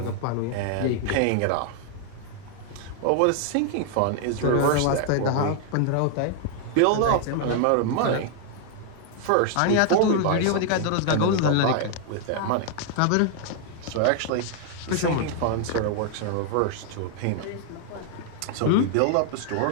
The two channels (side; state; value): both; different; correlation 0.00